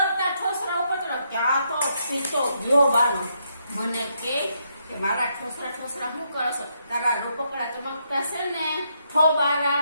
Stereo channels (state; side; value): inverted; both; correlation -0.77